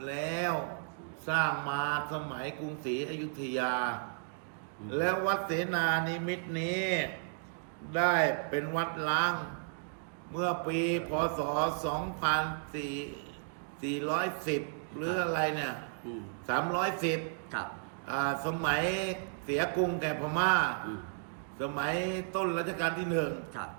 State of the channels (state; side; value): silent; left; digital silence